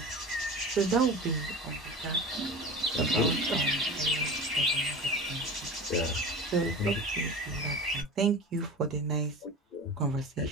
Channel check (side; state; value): both; normal; correlation 0.33